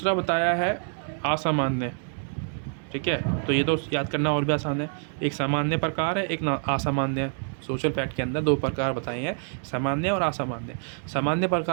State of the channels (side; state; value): left; silent; 57 dB below the other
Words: बताया है असामान्य, ठीक है। तो ये तो याद करना और भी आसान है। एक सामान्य प्रकार है, एक असामान्य। सोशल फैक्ट के अंदर 2 प्रकार बताए हैं, सामान्य और असामान्य। सामान्य